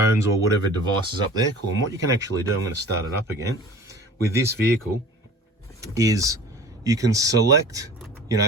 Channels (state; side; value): normal; both; correlation 0.41